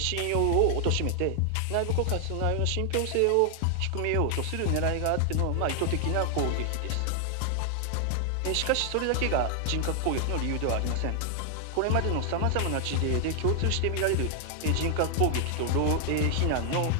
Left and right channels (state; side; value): different; both; correlation 0.00